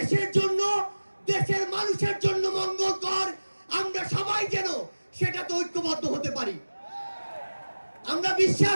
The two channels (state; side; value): inverted; both; correlation -1.00